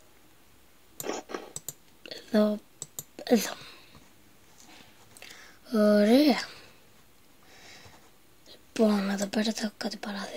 Εδώ. Ωραία. Λοιπόν, εδώ πέρα θα έχω κάτι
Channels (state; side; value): identical; both; correlation 1.00